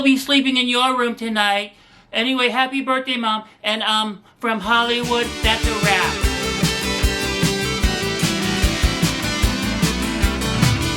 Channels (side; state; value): both; identical; correlation 1.00